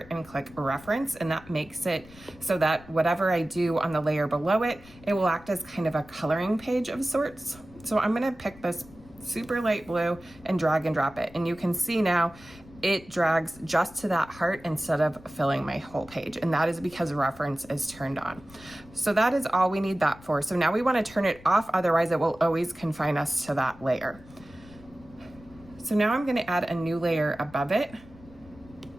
and click reference, and that makes it so that whatever I do on the layer below it, it will act as kind of a coloring page of sorts. So I'm gonna pick this super light blue and drag and drop it. And you can see now it drags just to that heart instead of filling my whole page. And that is because reference is turned on. So that is all we need that for. So now we wanna turn it off, otherwise it will always confine us to that layer. So now I'm gonna add a new layer above it,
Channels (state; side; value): noise; left; rumble, 22 dB below the sound